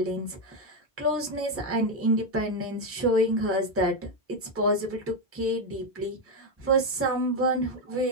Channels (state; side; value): normal; both; correlation 0.06